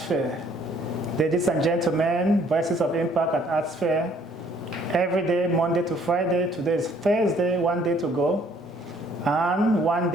Ladies and gentlemen, Voices of Impact at ArtSphere, every day, Monday to Friday. Today is Thursday, one day to go, and one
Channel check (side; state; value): both; normal; correlation 0.61